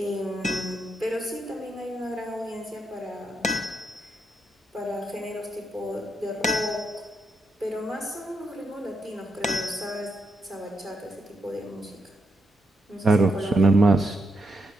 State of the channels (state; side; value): normal; both; correlation 0.82